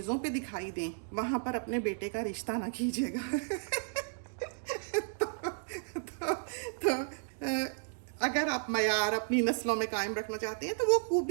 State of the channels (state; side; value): silent; left; digital silence